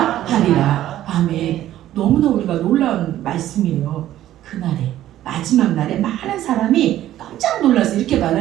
하리라. 아멘. 너무나 우리가 놀라운 말씀이에요. 그날에 마지막 날에 많은 사람이 깜짝 놀라서 이렇게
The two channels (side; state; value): left; quieter; 13.1 dB